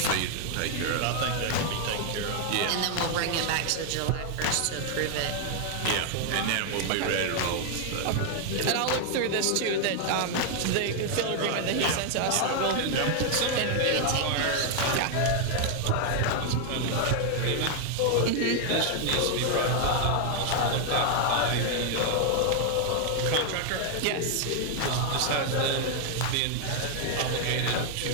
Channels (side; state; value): both; different; correlation 0.00